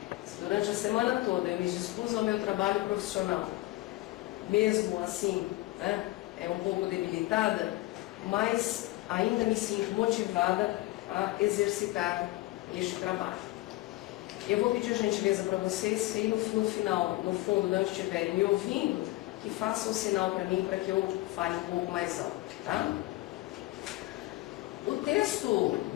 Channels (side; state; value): right; quieter; 18.8 dB